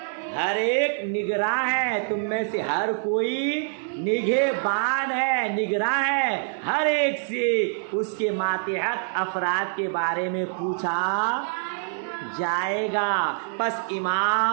ہر ایک نگراں ہے, تم میں سے ہر کوئی نگہبان ہے, نگراں ہے, ہر ایک سے اس کے ماتحت افراد کے بارے میں پوچھا جائے گا. پس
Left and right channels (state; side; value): silent; left; 62 dB below the other